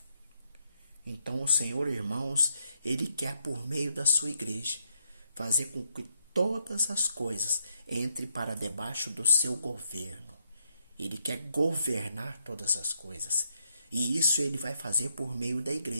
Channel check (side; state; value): both; inverted; correlation -0.76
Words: Então, o Senhor, irmãos, ele quer, por meio da sua igreja, fazer com que todas as coisas entrem para debaixo do seu governo. Ele quer governar todas as coisas. E isso ele vai fazer por meio da